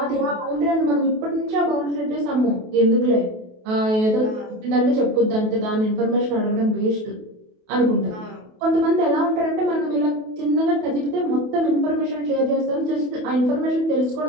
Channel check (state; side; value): late; left; 28 ms